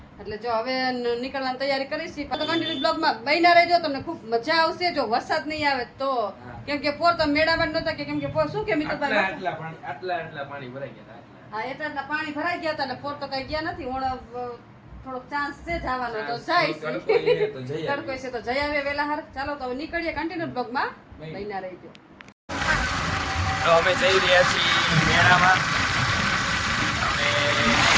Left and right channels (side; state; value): both; identical; correlation 1.00